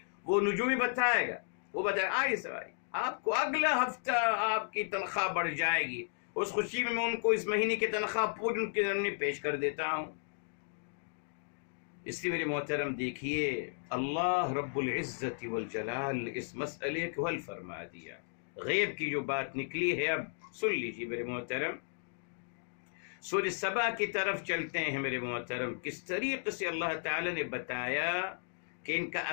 وہ نجومی بتائے گا، وہ بتائے آئیے سوائے آپ کو اگلا ہفتہ آپ کی تنخواہ بڑھ جائے گی۔ اس خوشی میں ان کو اس مہینے کی تنخواہ پوری ان کے ذمہ پیش کر دیتا ہوں۔ اس لیے میرے محترم دیکھیے، اللہ رب العزت والجلال اس مسئلے کو حل فرما دیا۔ غیب کی جو بات نکلی ہے اب سن لیجیے میرے محترم۔ سورہ سبا کی طرف چلتے ہیں میرے محترم، کس طریقے سے اللہ تعالی نے بتایا کہ ان کا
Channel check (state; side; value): silent; right; digital silence